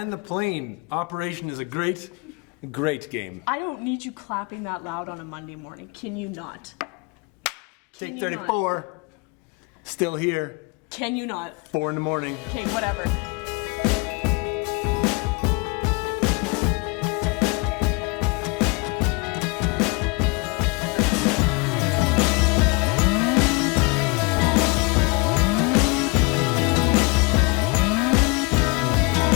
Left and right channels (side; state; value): right; quieter; 29.2 dB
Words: the plane. Operation is a great game. I don't need you clapping that loud on a Monday morning. Can you not? Can Take you 34. Still here. Can you not? 4 in the morning. Okay, whatever.